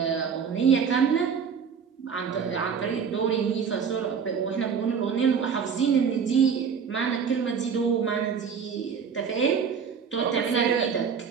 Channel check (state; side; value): quieter; left; 6.6 dB